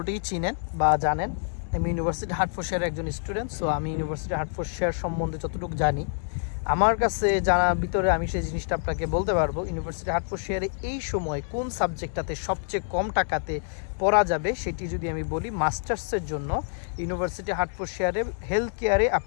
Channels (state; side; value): silent; right; digital silence